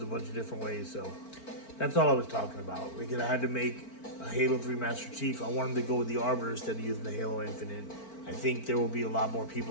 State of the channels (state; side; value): late; right; 4.4 ms